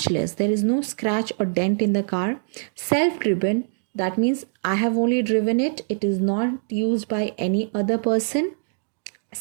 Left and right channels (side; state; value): left; silent; digital silence